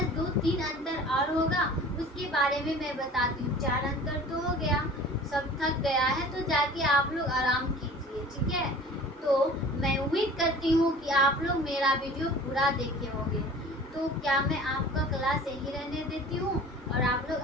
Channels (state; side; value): normal; both; correlation 0.43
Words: 2-3 अंतर और होगा, उसके बारे में मैं बताती हूँ। 4 अंतर तो हो गया, सब थक गया है तो जाके आप लोग आराम कीजिए। ठीक है, तो मैं उम्मीद करती हूँ कि आप लोग मेरा वीडियो पूरा देखे होंगे। तो क्या मैं आपका क्लास यही रहने देती हूँ, और आप लोग